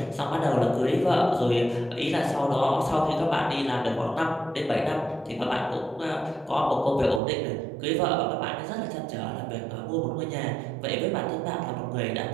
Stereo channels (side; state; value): left; drops out; at 7.2 s